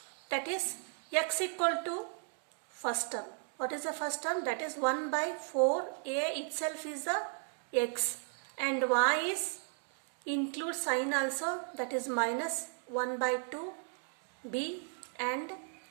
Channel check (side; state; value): left; silent; 54 dB below the other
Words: That is x equal to first term. What is the first term? That is 1 by 4a itself is the x, and y is include sign also, that is minus 1 by 2 b and